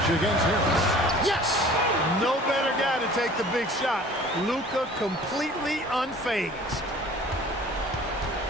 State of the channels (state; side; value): normal; both; correlation 0.48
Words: against Harris. Yes! No better guy to take the big shot. Luka completely unfazed.